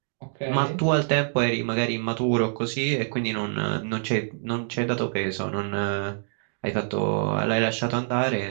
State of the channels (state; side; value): silent; left; digital silence